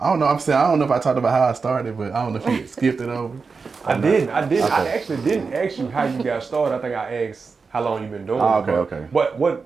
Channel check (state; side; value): quieter; left; 4.8 dB